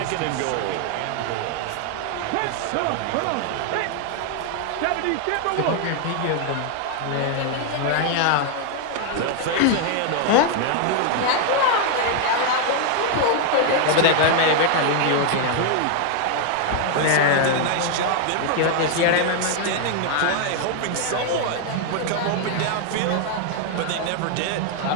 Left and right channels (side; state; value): both; different; correlation 0.00